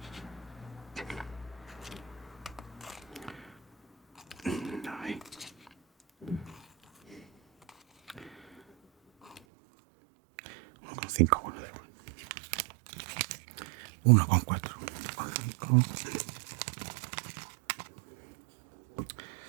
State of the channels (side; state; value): left; drops out; at 9.4 s